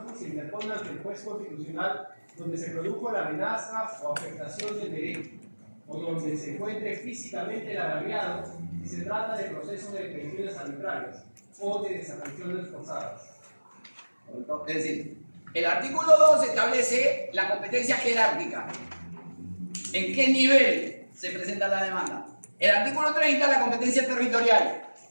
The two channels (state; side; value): inverted; both; correlation -1.00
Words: se interpone ante el juez constitucional donde se produjo la amenaza o afectación del derecho, o donde se encuentre físicamente el agraviado si se trata de procesos de detenciones arbitrarias o de desapariciones forzadas. Es decir, el artículo 2 establece la competencia jerárquica. ¿En qué nivel se presenta la demanda? El artículo 30, la competencia territorial.